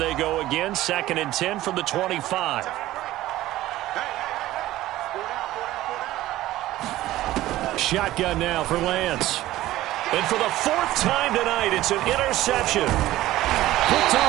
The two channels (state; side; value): quieter; left; 15.6 dB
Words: go again. 2nd and 10 from the 25. Shotgun now for Lance. And for the 4th time tonight, it's an interception. Picked